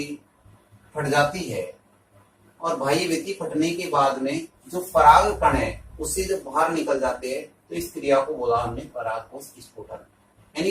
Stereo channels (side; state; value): both; identical; correlation 1.00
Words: फट जाती है और बाह्य भित्ति फटने के बाद में जो पराग कण है उससे जब बाहर निकल जाते हैं तो इस क्रिया को बोला हमने पराग कोश स्फुटन।